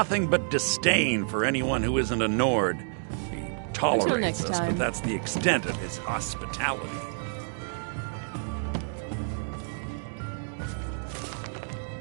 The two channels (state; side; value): silent; left; digital silence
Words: but disdain for anyone who isn't a Nord. He tolerates us, but that's the extent of his hospitality.